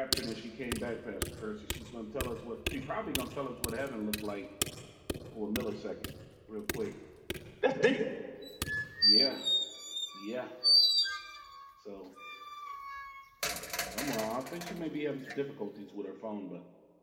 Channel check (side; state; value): both; identical; correlation 1.00